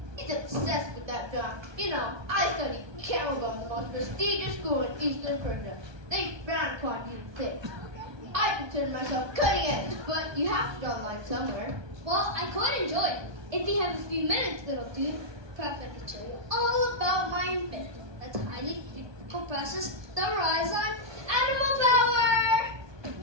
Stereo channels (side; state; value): left; late; 1.2 ms